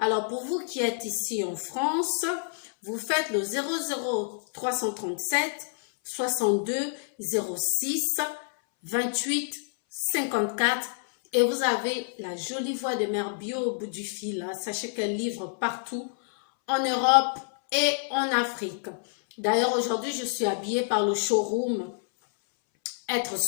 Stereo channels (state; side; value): silent; right; 59 dB below the other